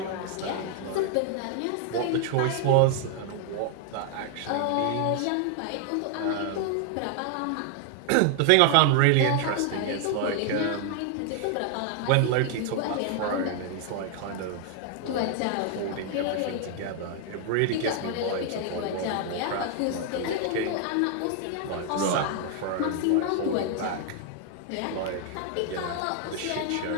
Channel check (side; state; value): both; different; correlation 0.00